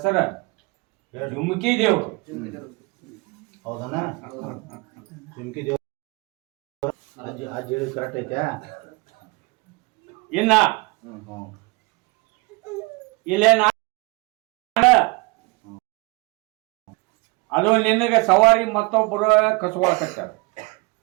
ಜುಮ್ಕಿ ದೇವ್ರು. ಹೌದಣ್ಣ? ಜುಮ್ಕಿ ದೇವ್ರ ಅಜ್ಜಿ ಹೇಳಿ ಕರೆಕ್ಟ್ ಐತೆ. ಇನ್ನ ಇಲ್ಲೇ ಅದು ನಿನಗೆ ಸವಾರಿ ಮತ್ತೊಬ್ಬರು ಕಸುವಾಕತ್ತಾರ,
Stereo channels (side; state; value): left; quieter; 27.3 dB